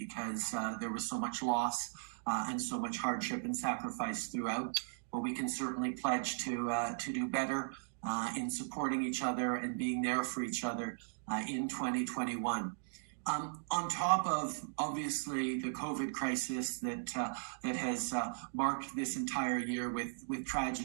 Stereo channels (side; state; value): left; silent; digital silence